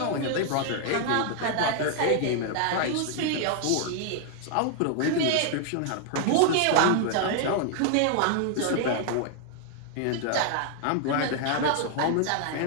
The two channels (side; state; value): both; different; correlation 0.00